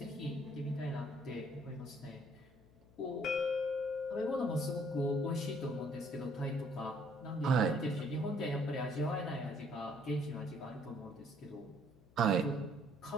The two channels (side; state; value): left; noise; hum, 26 dB below the sound